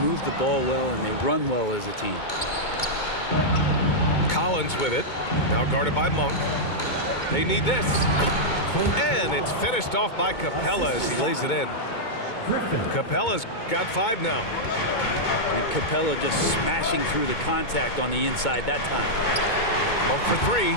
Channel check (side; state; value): right; late; 2.2 ms